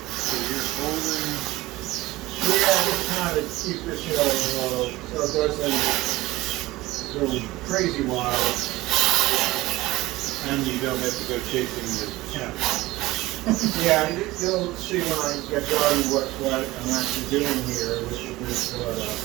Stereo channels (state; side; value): quieter; left; 18.7 dB